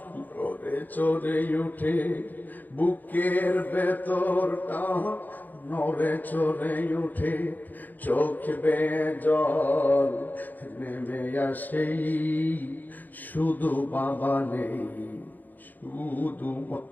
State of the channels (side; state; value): right; late; 0.085 ms